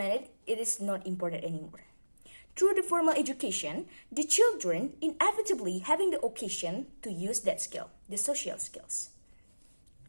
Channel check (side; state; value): both; inverted; correlation -1.00